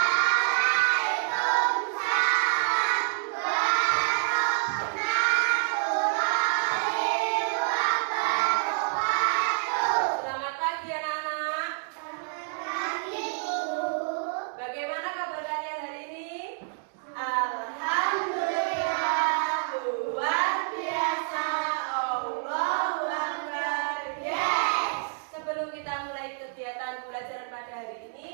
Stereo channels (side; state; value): left; silent; digital silence